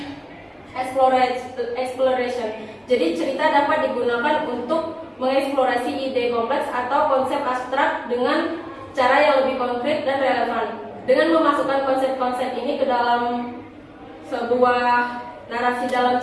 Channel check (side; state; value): both; identical; correlation 1.00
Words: exploration. Jadi cerita dapat digunakan untuk mengeksplorasi ide kompleks atau konsep abstrak dengan cara yang lebih konkret dan relevan. Dengan memasukkan konsep-konsep ini ke dalam sebuah narasi dalam